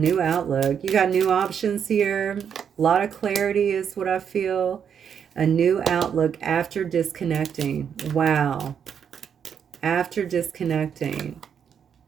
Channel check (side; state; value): left; quieter; 7.8 dB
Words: outlook. You got new options here. A lot of clarity is what I feel. A new outlook after disconnecting. Wow. After disconnecting